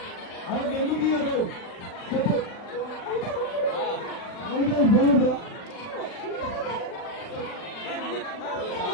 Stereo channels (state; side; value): late; right; 40 ms